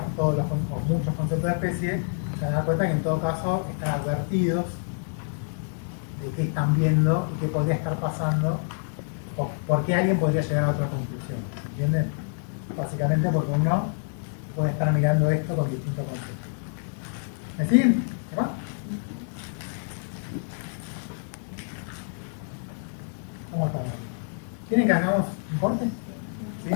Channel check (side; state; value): right; silent; 60 dB below the other